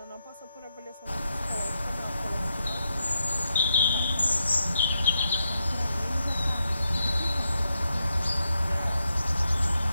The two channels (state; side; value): inverted; both; correlation -0.83